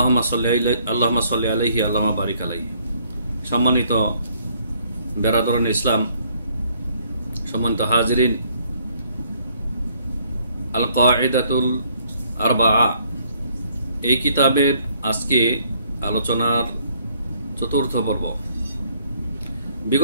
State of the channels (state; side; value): inverted; both; correlation -0.65